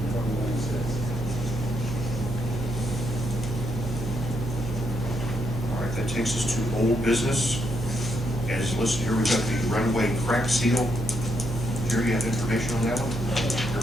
All right, that takes us to old business. As listed here, we've got the runway crack seal. Jerry, you have information on that one?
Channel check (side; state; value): right; noise; hum, 5 dB below the sound